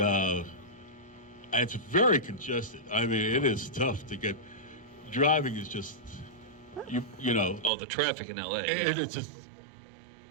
it's very congested. I mean, it is tough to get. Driving is just you know. Oh, the traffic in LA. It's just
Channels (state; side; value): drops out; left; at 7.7 s